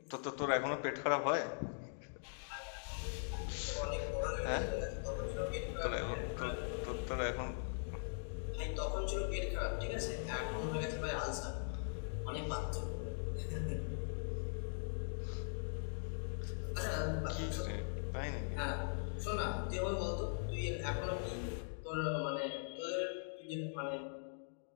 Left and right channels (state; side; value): silent; right; digital silence